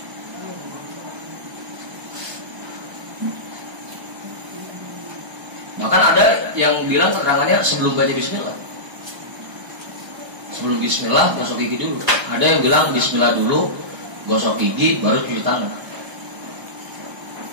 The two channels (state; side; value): late; left; 1.3 ms